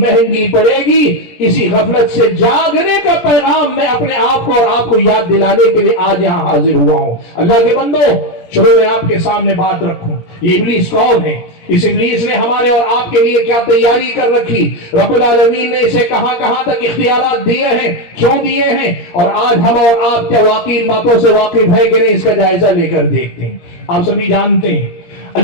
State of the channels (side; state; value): right; late; 17 ms